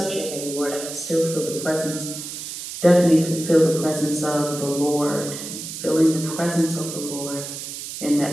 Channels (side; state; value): right; noise; hiss, 8 dB below the sound